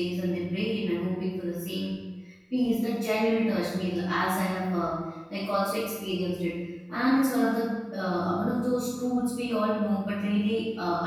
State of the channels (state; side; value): identical; both; correlation 1.00